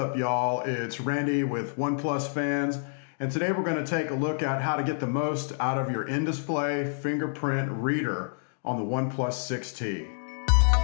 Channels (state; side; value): silent; right; digital silence